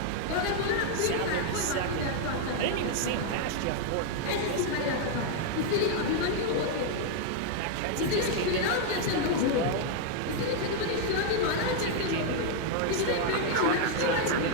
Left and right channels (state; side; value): different; both; correlation 0.00